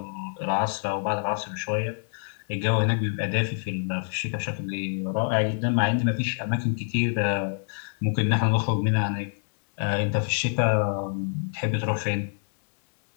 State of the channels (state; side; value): silent; right; digital silence